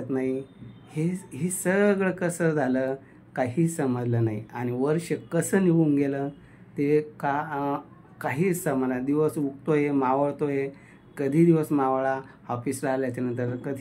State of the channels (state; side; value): identical; both; correlation 1.00